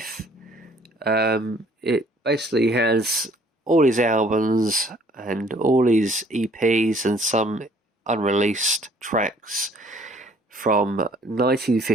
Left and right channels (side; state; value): both; normal; correlation 0.58